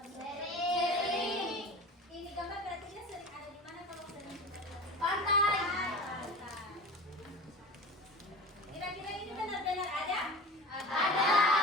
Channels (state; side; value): normal; both; correlation 0.34